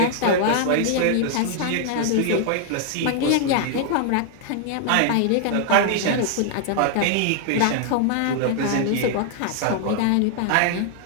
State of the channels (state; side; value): different; both; correlation 0.00